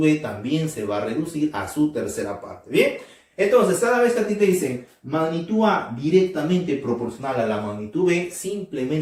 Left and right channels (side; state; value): both; identical; correlation 1.00